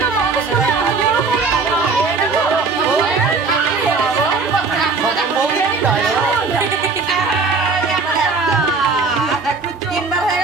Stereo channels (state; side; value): quieter; left; 4.3 dB